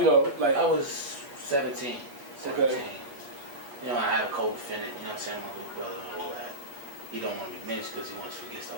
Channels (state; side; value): late; left; 8.3 ms